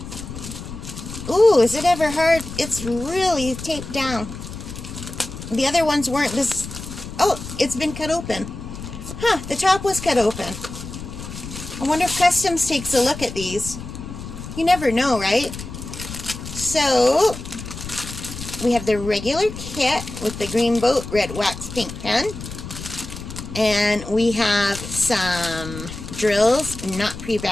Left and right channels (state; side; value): noise; left; rumble, 10 dB below the sound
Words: Ooh, is it ever hard? It's really taped down. The other ones weren't this... Oh, it's been cut open. Huh, the top was cut open. I wonder if Customs takes a look at these. You never know, right? So, we have the regular kit with the green boat, red wax, pink pen. And we have some drills, not